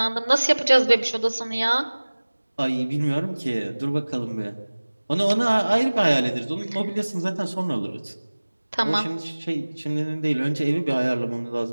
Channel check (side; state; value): both; inverted; correlation -1.00